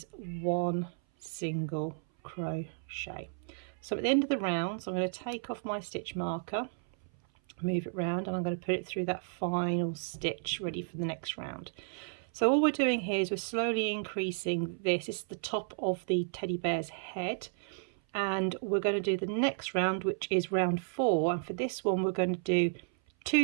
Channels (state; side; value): silent; left; 56 dB below the other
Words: 1 single crochet. So at the end of the round, so I'm going to take off my stitch marker, move it round, and I'm going to put it through that final stitch ready for the next round. So all we're doing here is we're slowly increasing this. This is the top of the teddy bear's head, and we're going to do the next round, which is round 4, and for this one we're going to do